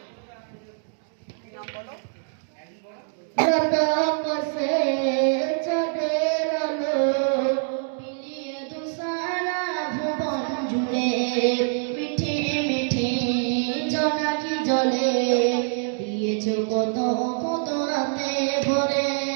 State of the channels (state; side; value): silent; left; digital silence